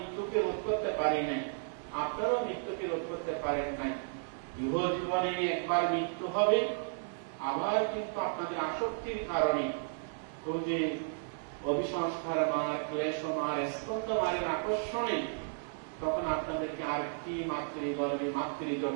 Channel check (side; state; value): left; silent; 55 dB below the other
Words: রোধ করতে পারি নাই, আপনারাও মৃত্যুকে রোধ করতে পারেন নাই। ইহ জীবনে একবার মৃত্যু হবে, আবার কিন্তু আপনাদের আসক্তির কারণে ওই যে অভিসংস্কার মার, ক্লেশ মার, স্কন্ধ মারের আকর্ষণে তখন আপনাদেরকে আরেকটি মাতৃগর্ভে